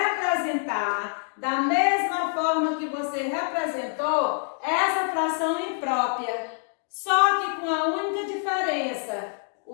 da mesma forma que você representou essa fração imprópria, só que com a única diferença,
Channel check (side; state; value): right; silent; 61 dB below the other